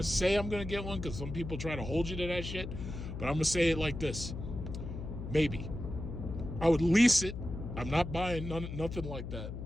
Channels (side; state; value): left; noise; hum, 7 dB below the sound